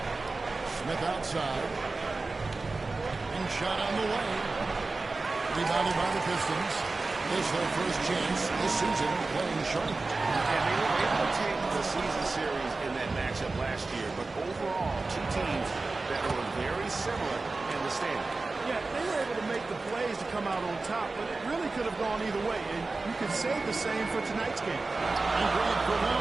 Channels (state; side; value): quieter; left; 3.6 dB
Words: Smith outside. And shot on the way. Rebounded by the Pistons. This is their first chance this season playing Charlotte. And they were able to take the season series in that matchup last year. But overall, two teams that were very similar in the standing. Yeah, they were able to make the plays to come out on top, but it really could have gone either way, and you could say the same for tonight's game. And Greg, for